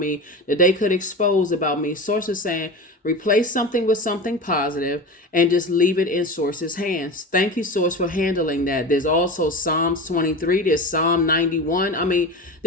that they could expose about me. Source is saying, replace something with something positive and just leave it in Source's hands. Thank you, Source, for handling that. There's also Psalms 23. There's Psalm 91. I mean,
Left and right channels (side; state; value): both; normal; correlation 0.29